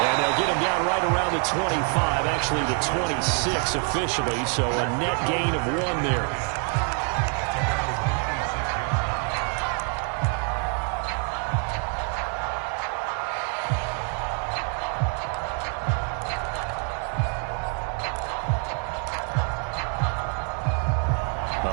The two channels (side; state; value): left; quieter; 39.5 dB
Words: And they'll get him down right around the 25, actually the 26 officially, so a net gain of 1 there.